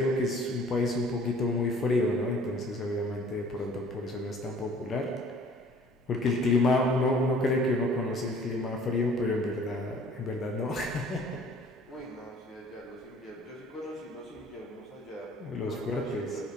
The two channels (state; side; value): normal; both; correlation 0.53